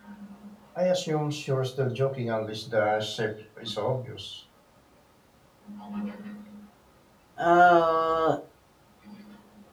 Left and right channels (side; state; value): both; identical; correlation 1.00